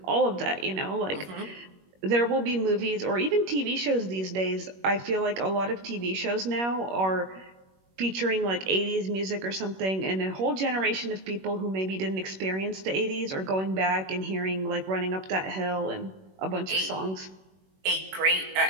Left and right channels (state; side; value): late; left; 21 ms